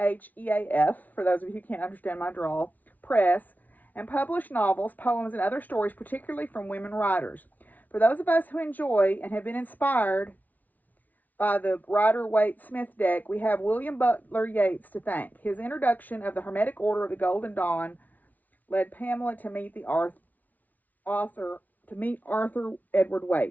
for those of you who can't understand my drawl, press, and published novels, poems, and other stories, particularly from women writers. For those of us who enjoy and have been inspired by the Rider-Waite-Smith deck, we have William Butler Yeats to thank. His introduction of the Hermetic Order of the Golden Dawn led Pamela to meet Arthur Edward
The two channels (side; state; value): right; late; 0.077 ms